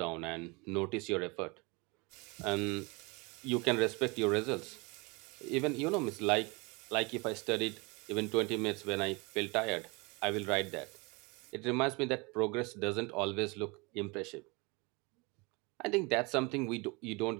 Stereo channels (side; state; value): left; quieter; 27.8 dB